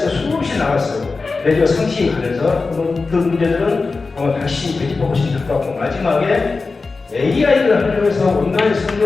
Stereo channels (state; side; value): quieter; right; 4.0 dB